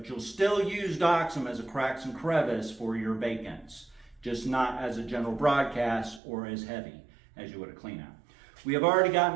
you'll still use Doxum as a cracks and crevice for your vacants, just not as a general broadcast or as heavy as you would a Cleanout. We have already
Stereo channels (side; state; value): left; drops out; at 6.2 s